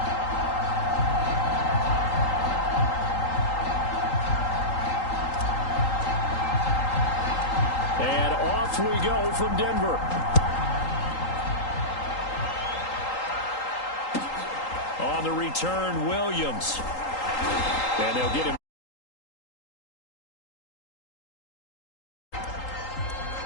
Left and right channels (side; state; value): right; late; 3.8 ms